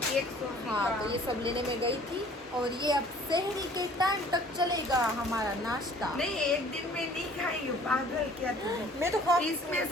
केक हाँ, तो ये सब लेने में गई थी। और ये अब शहरी के टाइम तक चलेगा हमारा नाश्ता। नहीं, एक दिन में नहीं खाई हूँ, पागल क्या तुम? मैं तो खा, इसमें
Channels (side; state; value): both; normal; correlation 0.53